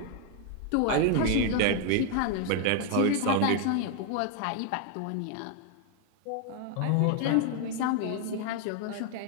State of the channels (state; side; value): different; both; correlation 0.00